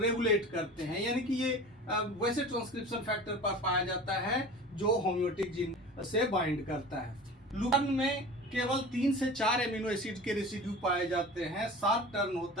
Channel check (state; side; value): normal; both; correlation 0.37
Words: करते हैं, यानी कि ये वैसे ट्रांसक्रिप्शन फैक्टर पर पाया जाता है जो होम्योटिक जीन से बाइंड करता है। लूपन में केवल 3 से 4 एमिनो एसिड के रेसिड्यू पाए जाते हैं, 7 टर्न